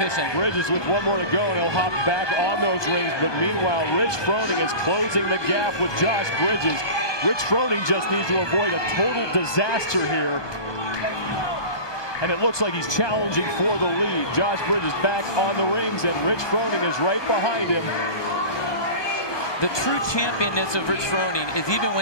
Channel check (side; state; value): right; late; 1.2 ms